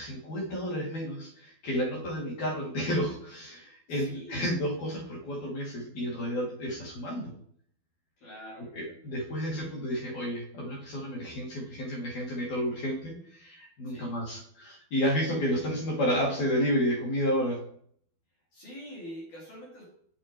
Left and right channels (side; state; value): right; late; 12 ms